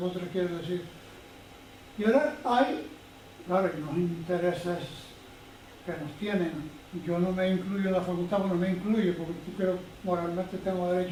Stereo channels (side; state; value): both; identical; correlation 1.00